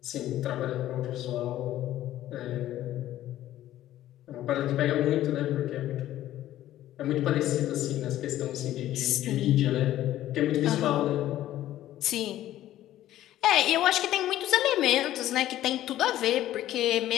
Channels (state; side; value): quieter; right; 13.5 dB